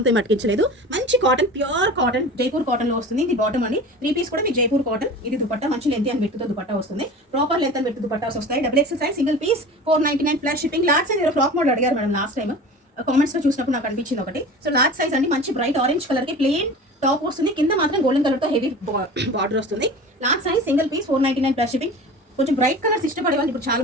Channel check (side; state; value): both; normal; correlation 0.36